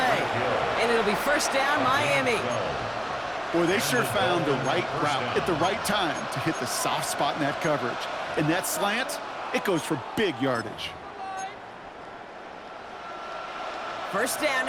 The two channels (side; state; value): both; identical; correlation 1.00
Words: And it'll be first down, Miami. Boy, they sure found the right route at the right time to hit the soft spot in that coverage. And that slant, it goes for big yardage. First down